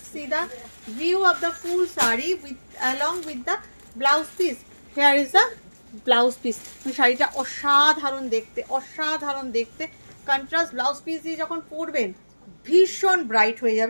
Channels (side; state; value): both; inverted; correlation -1.00